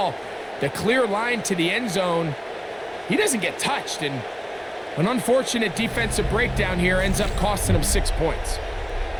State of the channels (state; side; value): identical; both; correlation 1.00